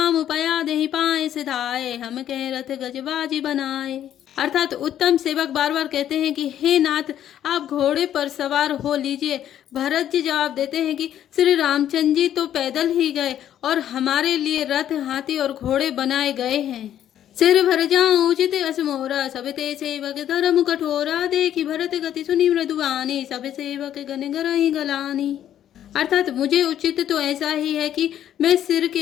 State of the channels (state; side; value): quieter; right; 10.9 dB